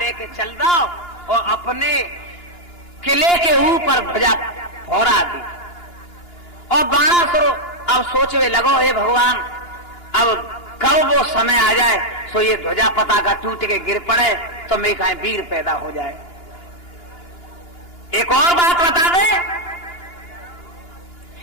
चल दो और अपने किले के ऊपर ध्वजा फहरा दी। और बाणासुर अब सोचने लगो, हे भगवान, अब कब वो समय आ जाए सो ये ध्वजा पताका टूट के गिर पड़े तो मैं कहीं वीर पैदा हो जाए। एक और बात बता दे,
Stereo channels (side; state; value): right; late; 2.9 ms